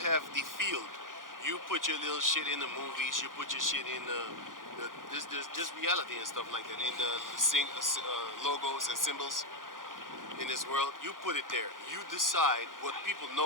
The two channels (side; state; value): left; late; 0.90 ms